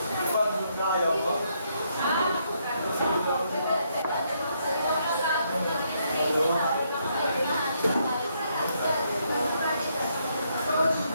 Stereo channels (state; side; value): inverted; both; correlation -0.74